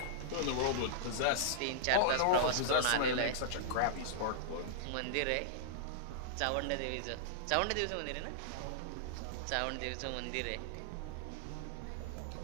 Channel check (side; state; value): both; different; correlation -0.02